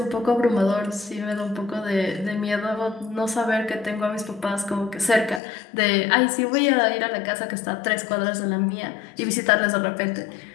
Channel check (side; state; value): right; drops out; at 5.4 s